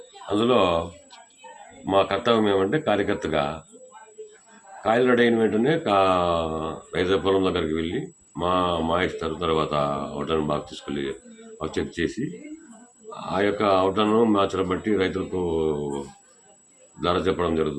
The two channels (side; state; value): both; identical; correlation 1.00